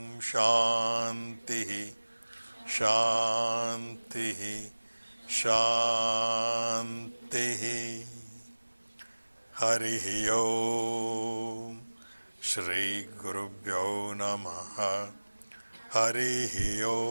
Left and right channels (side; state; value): both; inverted; correlation -1.00